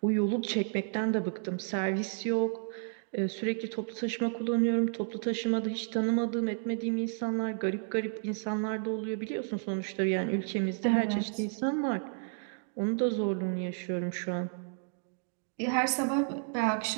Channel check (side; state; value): left; silent; 57 dB below the other